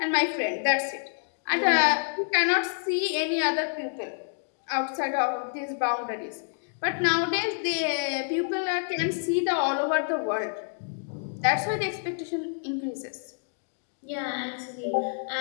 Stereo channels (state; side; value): silent; right; digital silence